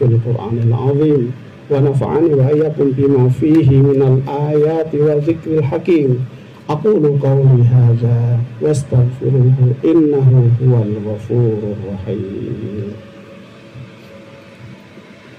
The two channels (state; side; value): identical; both; correlation 1.00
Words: Qur'anil azim, wa nafa'ani wa iyyakum bima fihi minal ayati wa dzikril hakim. Aqulu qawli hadza wastaghfiruhu innahu huwal ghafurur rahim.